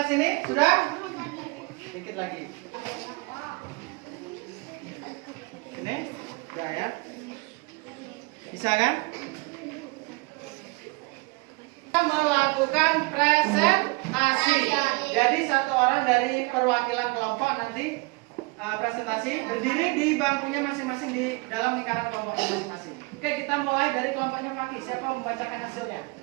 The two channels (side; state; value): left; quieter; 25.7 dB